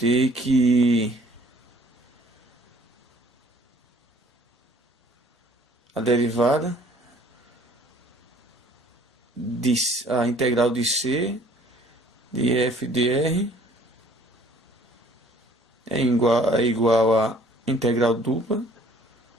que a derivada a integral de C de f dr é igual a integral dupla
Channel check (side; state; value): both; normal; correlation 0.56